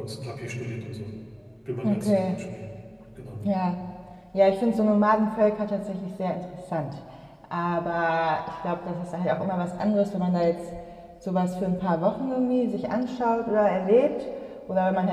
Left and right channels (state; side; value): identical; both; correlation 1.00